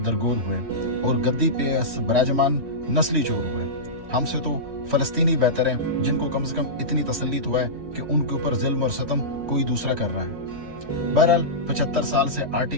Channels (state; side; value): late; left; 2.9 ms